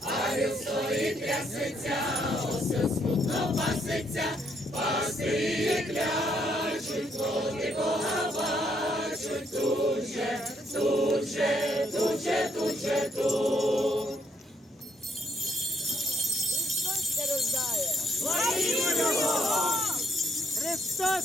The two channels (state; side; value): normal; both; correlation 0.72